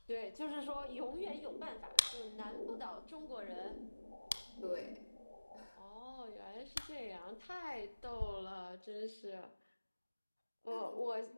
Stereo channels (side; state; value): both; inverted; correlation -1.00